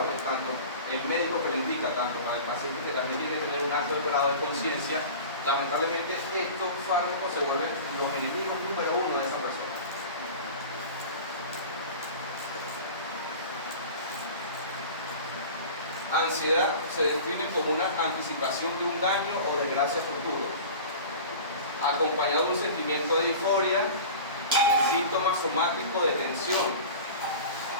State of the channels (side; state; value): both; inverted; correlation -0.37